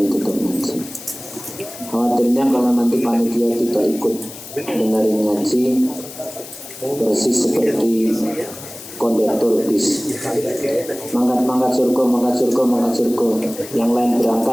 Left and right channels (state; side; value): noise; left; hiss, 14 dB below the sound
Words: Khawatirnya kalau nanti panitia tidak ikut dengerin ngaji, persis seperti kondektor bis. Mangkat surga. Yang lain